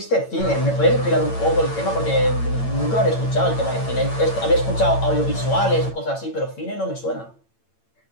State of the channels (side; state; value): right; late; 8.9 ms